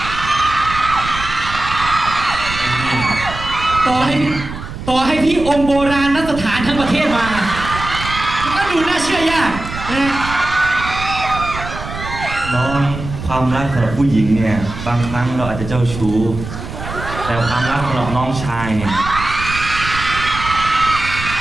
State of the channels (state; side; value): noise; right; rumble, 9 dB below the sound